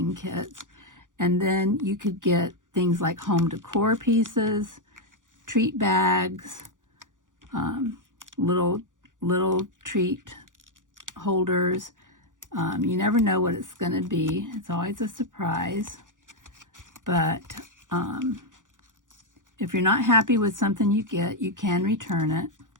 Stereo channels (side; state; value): left; late; 0.87 ms